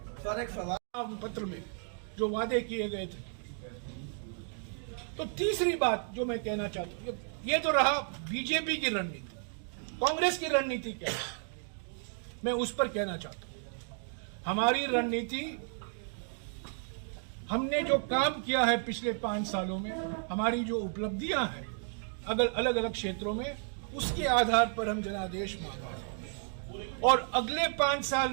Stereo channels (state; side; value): silent; left; 56 dB below the other